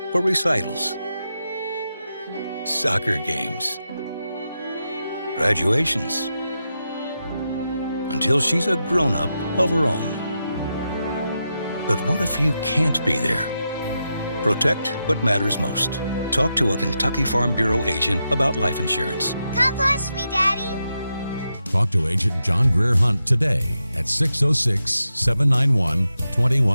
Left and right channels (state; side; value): inverted; both; correlation -0.87